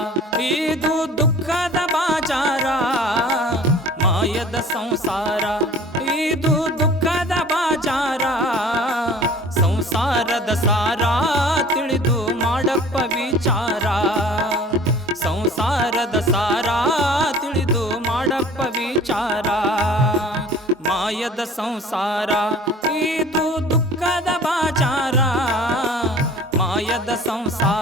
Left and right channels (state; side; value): normal; both; correlation 0.46